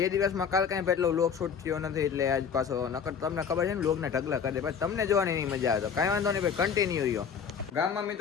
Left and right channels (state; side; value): quieter; right; 6.9 dB